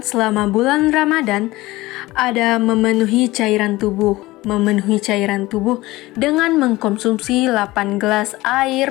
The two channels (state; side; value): quieter; right; 19.1 dB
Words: selama bulan Ramadan. Ada memenuhi cairan tubuh dengan mengkonsumsi 8 gelas